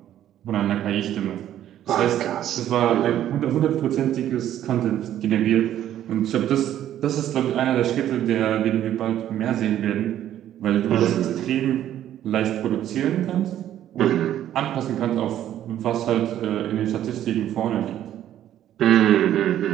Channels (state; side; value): quieter; left; 11.6 dB